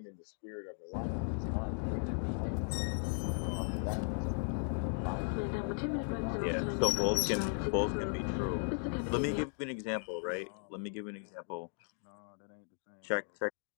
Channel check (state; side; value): silent; right; 53 dB below the other